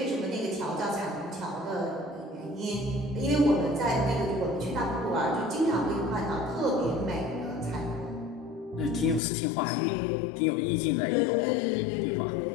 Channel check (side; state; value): right; drops out; at 9.2 s